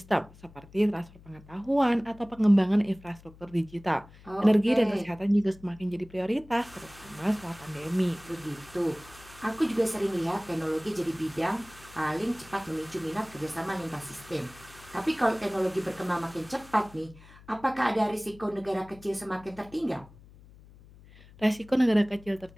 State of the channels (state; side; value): noise; left; hum, 22 dB below the sound